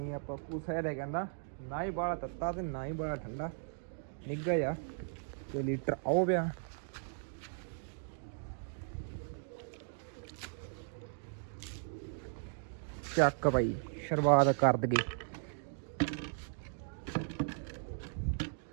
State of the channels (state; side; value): silent; left; digital silence